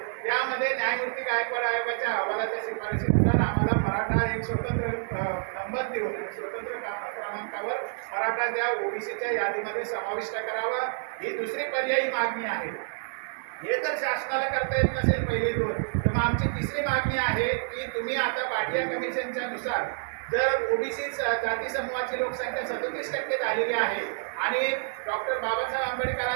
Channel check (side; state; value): left; silent; digital silence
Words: त्यामध्ये न्यायमूर्ती गायकवाड आयोगाच्या अहवालाच्या शिफारशीनुसार आम्हाला मराठा एक स्वतंत्र नंबर देऊन स्वतंत्र क्रमांकावर मराठा त्या ओबीसीच्या यादीमध्ये समाविष्ट करावा ही दुसरी पर्यायी मागणी आहे. हे जर शासनाला करता येत नसेल पहिले 2 तर मग आमची तिसरी मागणी आहे की तुम्ही आता भाटिया कमिशनच्या नुसार जर ओबीसी जाती समूहाची लोकसंख्या 37% झालेली आहे आणि डॉक्टर बाबासाहेब